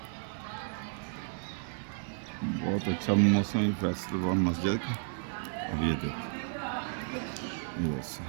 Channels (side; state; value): left; silent; 56 dB below the other